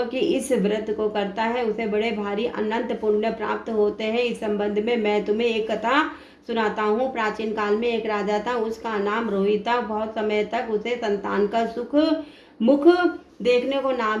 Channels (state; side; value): identical; both; correlation 1.00